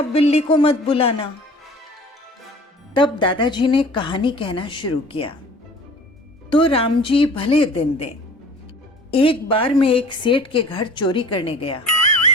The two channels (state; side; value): normal; both; correlation 0.45